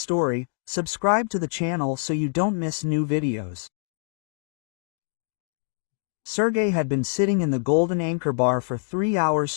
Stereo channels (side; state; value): right; silent; digital silence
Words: subscribe to the channel so you don't miss new videos. Sergei had been sitting in the Golden Anchor bar for 3 hours